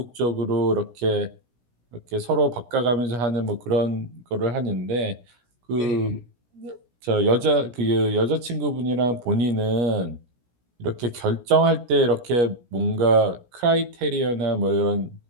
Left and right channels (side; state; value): left; late; 17 ms